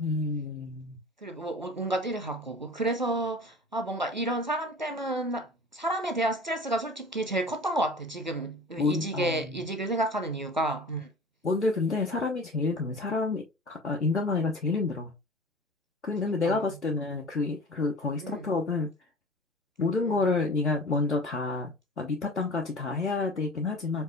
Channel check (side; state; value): both; normal; correlation 0.40